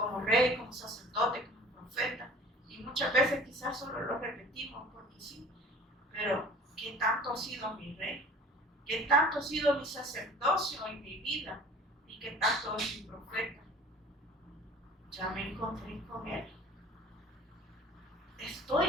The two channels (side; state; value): both; normal; correlation 0.45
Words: rey, como sacerdote, como profeta, y muchas veces quizás solo lo repetimos porque sí, pero ¿qué tanto ha sido mi rey? ¿Qué tanto ha sido mi sacerdocio en mi vida? ¿Y qué tanto es mi profeta? Ya me encontré con él.